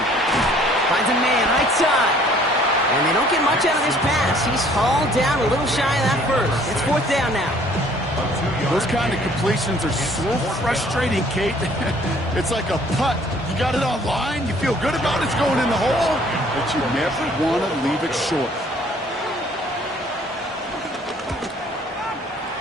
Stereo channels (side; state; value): both; normal; correlation 0.57